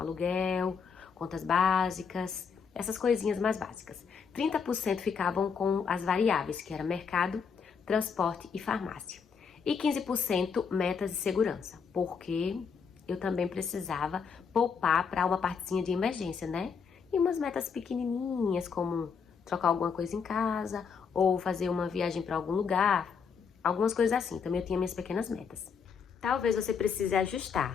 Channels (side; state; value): right; quieter; 6.2 dB